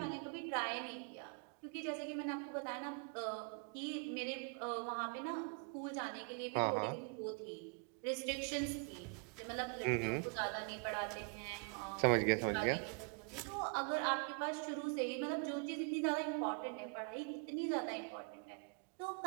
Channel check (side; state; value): left; quieter; 39.7 dB